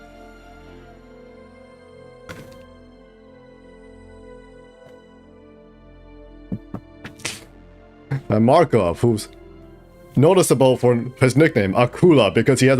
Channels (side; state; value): both; identical; correlation 1.00